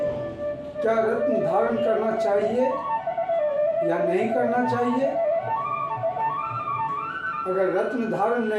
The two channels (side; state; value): both; identical; correlation 1.00